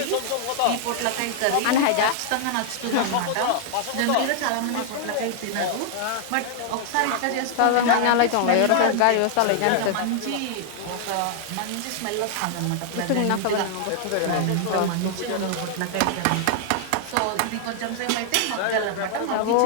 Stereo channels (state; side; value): different; both; correlation 0.00